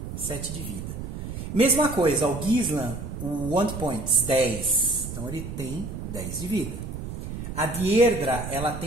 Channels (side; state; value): right; noise; rumble, 7 dB below the sound